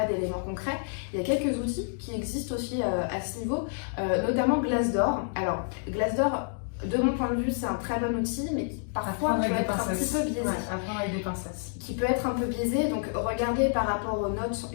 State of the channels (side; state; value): right; silent; digital silence